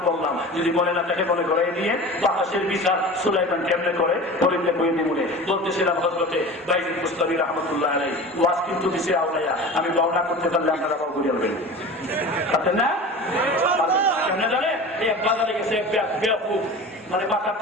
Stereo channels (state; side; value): normal; both; correlation 0.35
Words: বললাম, যদি মনে না থাকে মনে করে নিয়ে বাতাসের বিচার সুলাইমান কেমনে করে বলিতে বইয়ে দিমুনে বলতেছিলাম। হযরতে বাইজিদ বুস্তামি রাহমাতুল্লাহ আলাইহি ওয়াজ কিন্তু দিছে আওলায়া, আমি বর্ণনা করতে পারলে আপনারা বাবু বলবেন পারতেন না? কেমনে জানে? এক বাজারে গেছে বেয়াকুব, মানে